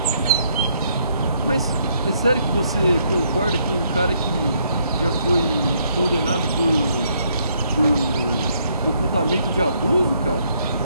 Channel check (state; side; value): inverted; both; correlation -0.71